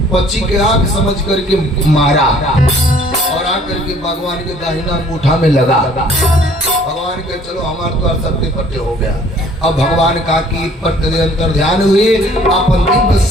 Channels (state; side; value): normal; both; correlation 0.56